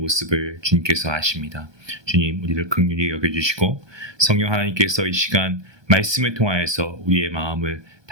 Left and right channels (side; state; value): left; late; 1.2 ms